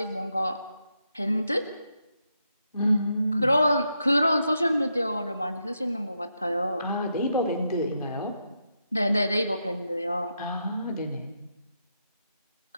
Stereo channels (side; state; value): both; inverted; correlation -0.83